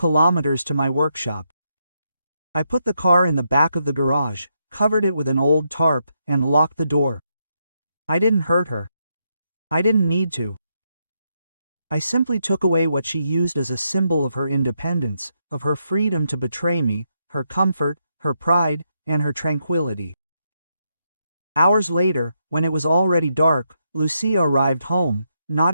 to my workshop. I put the car in the back of the garage, covered it with an old tarp, and locked the door. I didn't hurt her. I didn't need to. I simply took away what she used as a symbol of her independence, of her freedom to betray me, her comfort, her pride, and her tranquility. Hours later, when it was already dark, Lucia arrived home, not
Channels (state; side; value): inverted; both; correlation -0.81